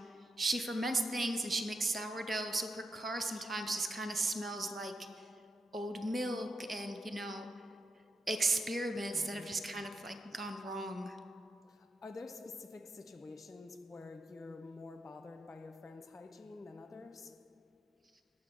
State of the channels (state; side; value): normal; both; correlation 0.85